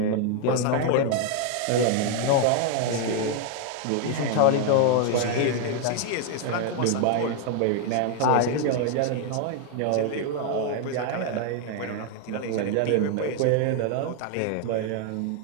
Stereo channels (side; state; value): both; different; correlation 0.00